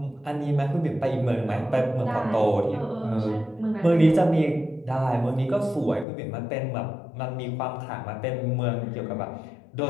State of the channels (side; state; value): right; drops out; at 6.1 s